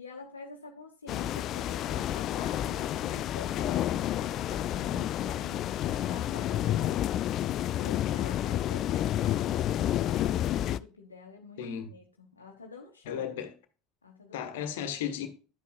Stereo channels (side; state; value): right; quieter; 11.1 dB